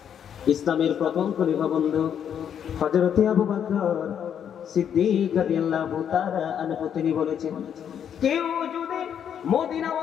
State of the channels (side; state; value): right; quieter; 8.7 dB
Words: ইসলামের প্রথম খলিফা বন্ধু হযরত আবু বকর সিদ্দিক রাদিয়াল্লাহু তাআলা আনহু তিনি বলেছেন, কেউ যদি